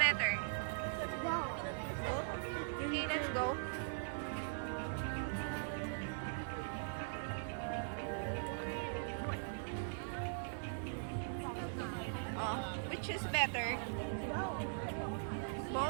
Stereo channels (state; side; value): silent; left; 50 dB below the other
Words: No. Both? Okay, let's go. Oh, which is better? No.